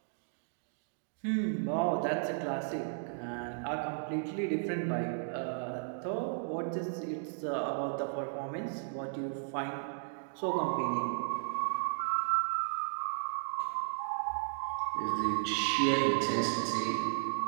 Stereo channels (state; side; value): silent; left; digital silence